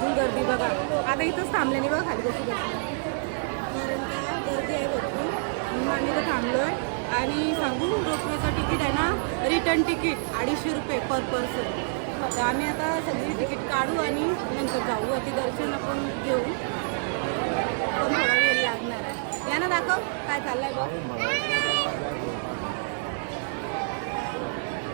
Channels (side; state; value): left; silent; 59 dB below the other